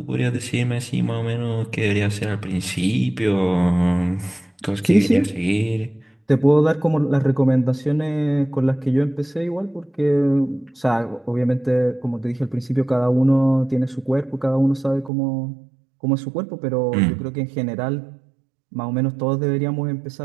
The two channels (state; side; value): drops out; left; at 15.1 s